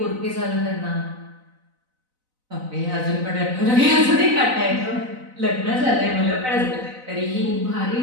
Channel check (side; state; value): left; late; 4.0 ms